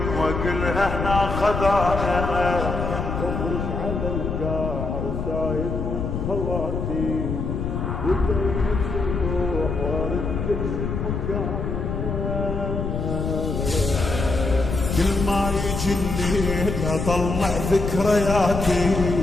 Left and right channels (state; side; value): noise; left; rumble, 3 dB below the sound